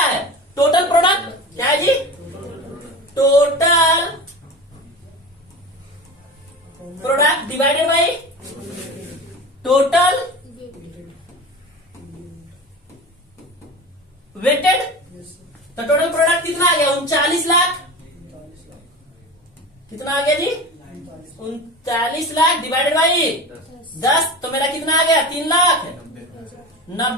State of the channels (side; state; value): both; normal; correlation 0.30